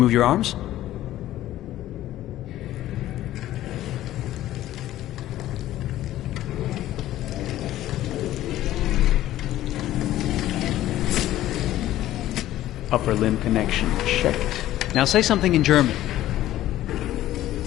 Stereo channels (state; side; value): quieter; right; 14.0 dB